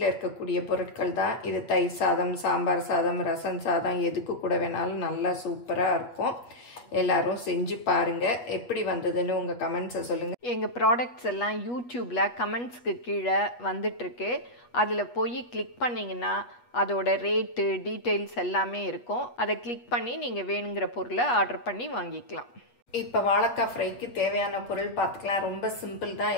இருக்கக்கூடிய பொருட்கள் தான். இது தயிர் சாதம், சாம்பார் சாதம், ரசம் சாதம் எதுக்கு கூட வேணாலும் நல்லா சூப்பரா இருக்கும். எல்லாரும் செஞ்சு பாருங்க. எப்படி வந்ததுன்னு உங்க கமெண்ட்ஸை சொல்லுங்க. எங்க ப்ராடக்ட்ஸ் எல்லாம் யூடியூப்ல கமெண்ட்ஸ்க்கு கீழே வந்துட்டு இருக்கு. அதுல போய் கிளிக் பண்ணீங்கன்னா அதோட ரேட்டு டீடைல்ஸ் எல்லாமே இருக்கும். அதை கிளிக் பண்ணி நீங்க வேணுங்கிற பொருளை ஆர்டர் பண்ணி வாங்கிக்கலாம். இப்போ வாழைக்காய் ஃப்ரைக்கு தேவையான பொருள் பார்த்துக்கலாம். ரொம்ப சிம்பிள் தான்.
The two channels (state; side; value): late; right; 8.3 ms